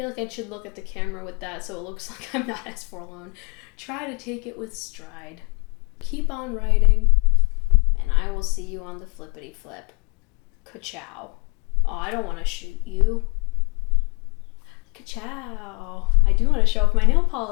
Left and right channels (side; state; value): right; quieter; 31.3 dB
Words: like I should look at the camera with that so it looks like I'm not as forlorn. Try to take it with stride. Keep on writing, and I will see you on the flippity flip. Ka-chow. Oh, I don't want to shoot you. Ka-chow. I do want to show off my nail